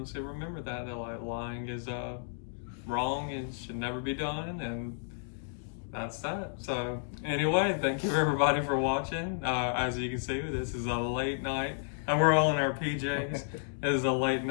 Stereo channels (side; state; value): right; silent; digital silence